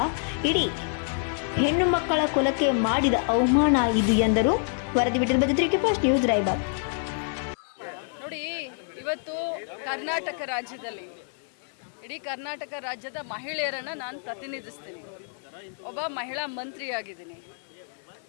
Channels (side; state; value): right; silent; 60 dB below the other